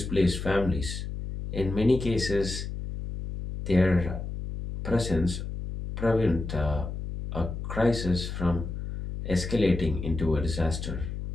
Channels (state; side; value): noise; left; hum, 6 dB below the sound